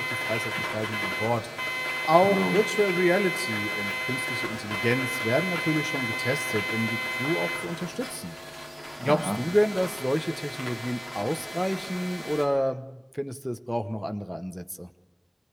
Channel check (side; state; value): both; identical; correlation 1.00